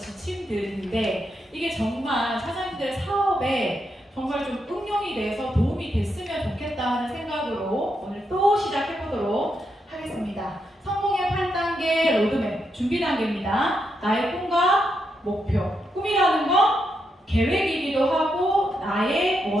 이게 정말 사장님들의 사업에 정말 좀 응용이 돼서 도움이 됐으면 좋겠다 하는 생각으로 오늘 또 시작해보도록 하겠습니다. 성공의 8단계 로드맵 준비 단계입니다. 나의 꿈과 목표. 꿈이라는 건 계획이기도 하고 나의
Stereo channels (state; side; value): normal; both; correlation 0.82